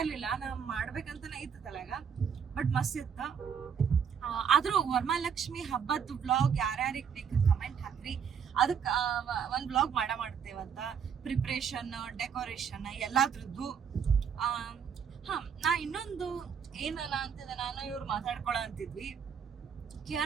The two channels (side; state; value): left; quieter; 7.2 dB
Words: ಇರ್ಲಿಲ್ಲ. ನಾವ್ ಮಾಡ್ಬೇಕಂತಾನೆ ಇತ್ತು ತಲೆಗ, ಬಟ್ ಮಸ್ತ್ ಇತ್ತ. ಆದ್ರೂ ವರಮಹಾಲಕ್ಷ್ಮಿ ಹಬ್ಬದ ವ್ಲಾಗ್ ಯಾರ್ಯಾರಿಗೆ ಬೇಕು ಕಮೆಂಟ್ ಹಾಕ್ರಿ. ಅದಕ್ಕೆ ಒಂದ್ ವ್ಲಾಗ್ ಮಾಡ್ತೇವಂತ. ಪ್ರಿಪ್ರೇಷನ್, ಡೆಕೋರೇಷನ್ ಎಲ್ಲಾದ್ರದ್ದು. ನಾ ಇನ್ನೊಂದು ಏನಲ್ಲ ಅಂತಿದ್ದೆ, ನಾನು ಇವ್ರು ಮಾತಾಡ್ಕೊಳ ಅಂತಿದ್ವಿ.